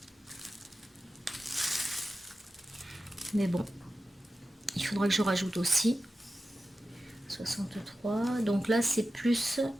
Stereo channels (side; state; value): both; normal; correlation 0.93